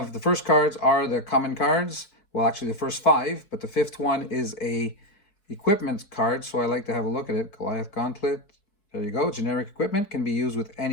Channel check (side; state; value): right; late; 4.5 ms